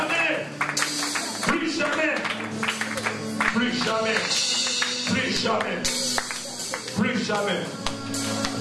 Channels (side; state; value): both; identical; correlation 1.00